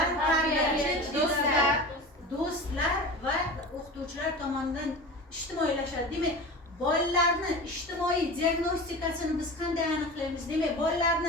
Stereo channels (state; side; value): normal; both; correlation 0.32